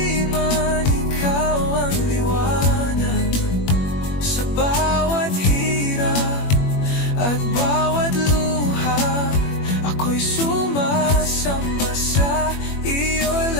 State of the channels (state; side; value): late; right; 21 ms